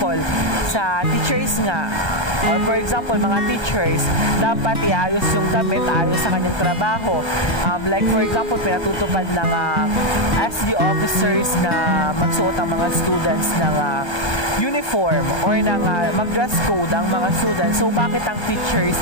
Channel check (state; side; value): late; right; 1.2 ms